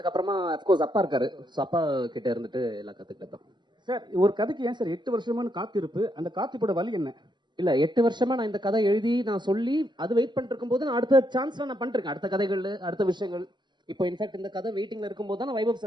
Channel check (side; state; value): left; late; 0.22 ms